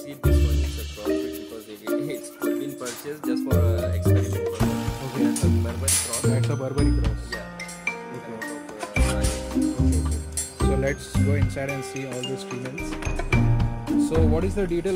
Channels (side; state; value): both; identical; correlation 1.00